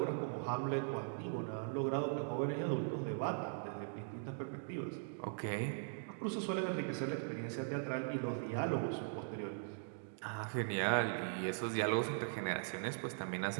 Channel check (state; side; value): silent; left; digital silence